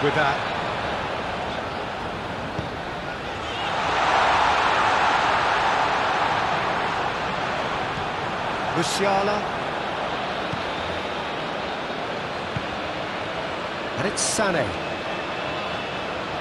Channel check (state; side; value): identical; both; correlation 1.00